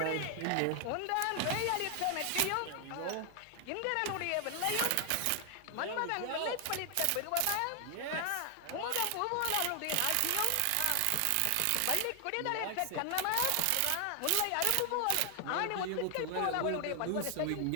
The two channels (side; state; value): both; different; correlation 0.00